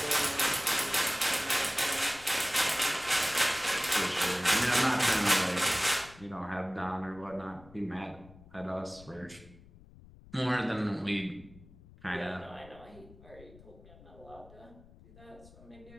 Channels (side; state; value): left; noise; rumble, 22 dB below the sound